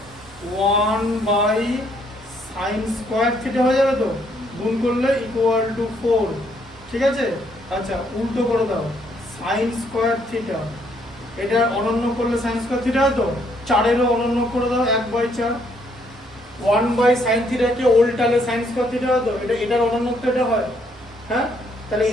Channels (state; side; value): normal; both; correlation 0.69